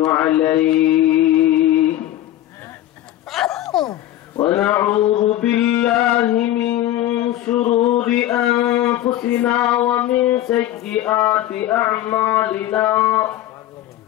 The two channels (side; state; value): right; quieter; 13.7 dB